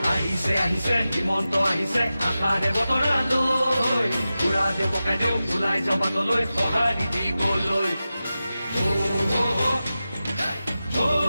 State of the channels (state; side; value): inverted; both; correlation -0.93